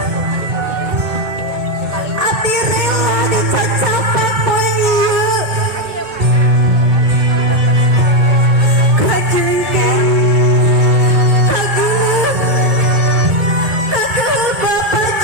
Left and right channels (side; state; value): left; late; 2.2 ms